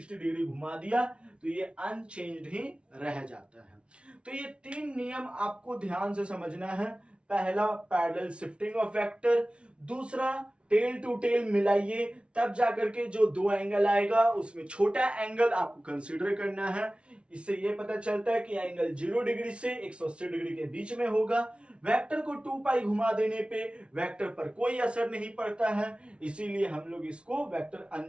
डिग्री घुमा दिया तो ये अनचेंज्ड ही रह जाता है। तो ये तीन नियम आपको ध्यान से समझना है। पहला पैरेलल शिफ्टिंग ऑफ वेक्टर, दूसरा टेल टू टेल मिलाइए तब जाकर के जो दो एंगल आएगा उसमें छोटा एंगल आपको कंसीडर करना है। इससे ये पता चलता है कि एंगल 0 डिग्री से 180 डिग्री के बीच में होगा। वेक्टर को 2 पाई घुमा देने पे वेक्टर पर कोई असर नहीं पड़ता है, इसीलिए हम लोग इसको वेक्टर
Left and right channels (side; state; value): left; late; 0.059 ms